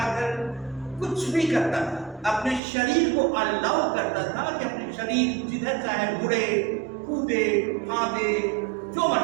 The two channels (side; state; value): left; drops out; at 2.6 s